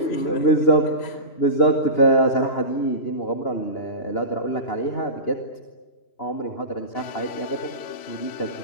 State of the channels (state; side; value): late; right; 2.9 ms